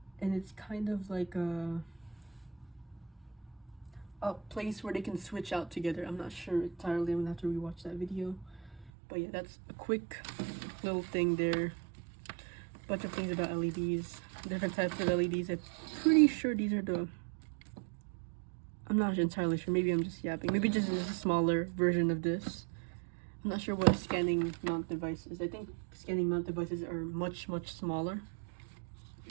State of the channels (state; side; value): drops out; left; at 8.9 s